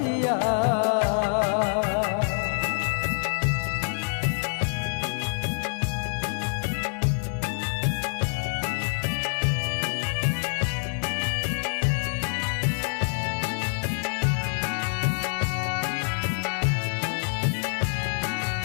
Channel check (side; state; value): right; silent; 61 dB below the other